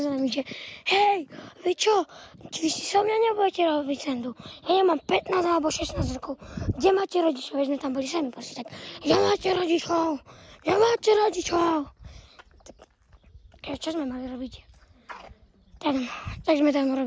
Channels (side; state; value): both; identical; correlation 1.00